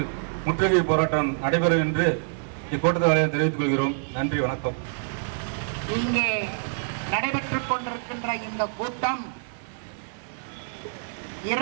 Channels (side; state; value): left; silent; digital silence